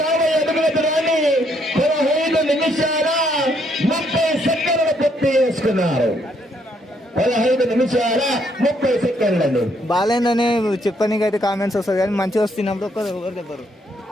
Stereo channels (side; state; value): both; normal; correlation 0.71